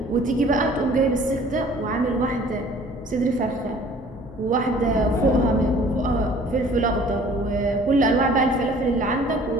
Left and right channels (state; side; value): normal; both; correlation 0.52